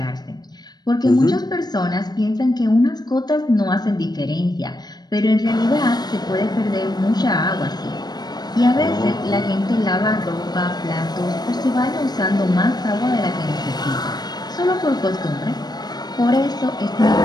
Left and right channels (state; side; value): late; right; 0.19 ms